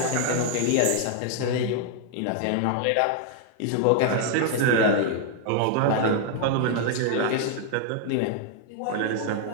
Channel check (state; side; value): different; both; correlation 0.00